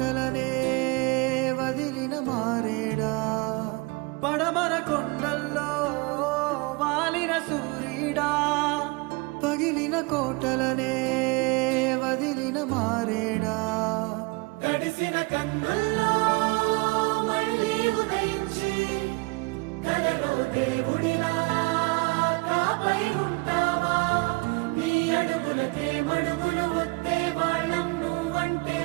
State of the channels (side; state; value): left; quieter; 26.6 dB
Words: వదిలిన మారేడా. పడమర కొండల్లో వాలిన సూర్యుడా, పగిలిన కోటలనే వదిలిన మారేడా. తడిసిన కన్నుల్లో మళ్ళీ ఉదయించి కలలో దేవుడిలా కాపై ఉంటావా. నీ అడుగులకే మడుగులు వస్తే వాళ్ళం, నువ్వంటే